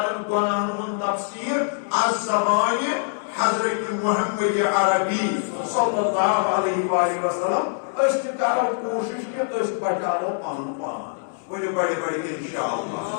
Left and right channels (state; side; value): silent; right; 63 dB below the other